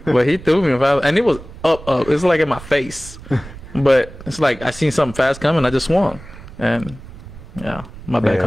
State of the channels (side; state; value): right; noise; rumble, 16 dB below the sound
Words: but he threw me a fastball, and it was up. It's like in my face, but it's like I seen something fast coming. I just swung, and yeah, my bad